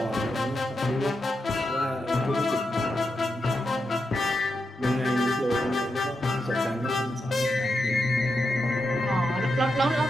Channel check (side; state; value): both; normal; correlation 0.86